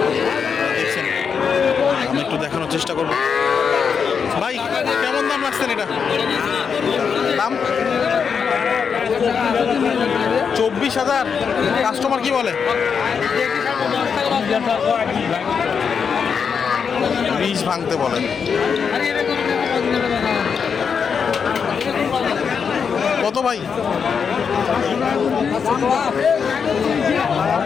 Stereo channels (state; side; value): quieter; right; 6.4 dB